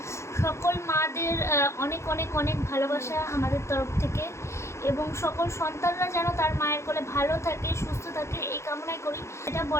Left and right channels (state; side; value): late; right; 0.13 ms